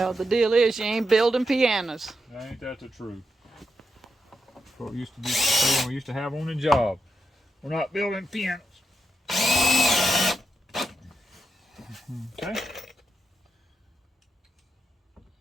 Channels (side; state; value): both; normal; correlation 0.85